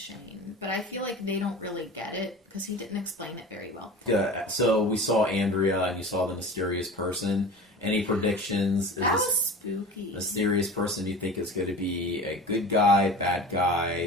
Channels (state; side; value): normal; both; correlation 0.35